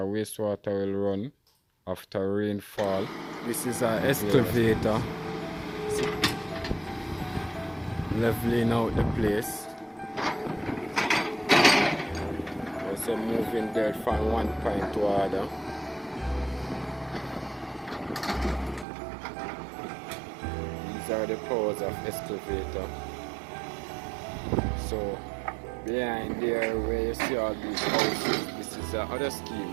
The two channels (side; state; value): left; drops out; at 18.9 s